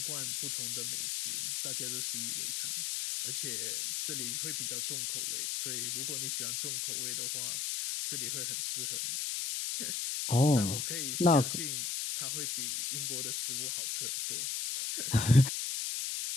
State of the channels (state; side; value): noise; left; hiss, 1 dB below the sound